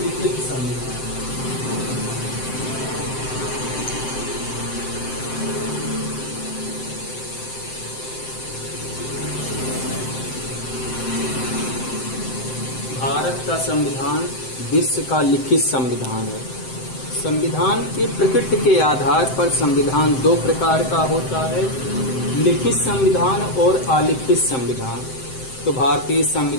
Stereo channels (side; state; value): right; late; 7.7 ms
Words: संविधान। भारत का संविधान विश्व का लिखित संविधान है। संविधान के प्रकृति के आधार पर संविधान दो प्रकार का होता है, लिखित संविधान और अलिखित संविधान। तो भारतीय